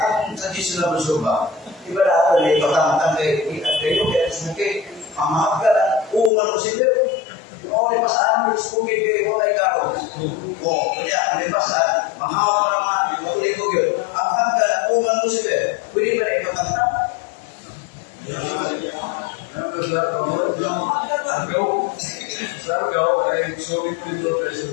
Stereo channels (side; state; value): right; drops out; at 6.3 s